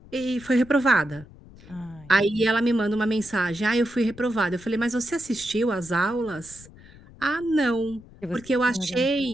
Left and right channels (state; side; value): noise; left; rumble, 21 dB below the sound